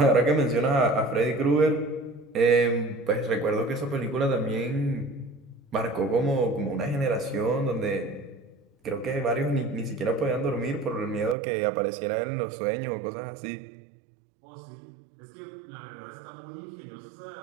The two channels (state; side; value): drops out; left; at 11.4 s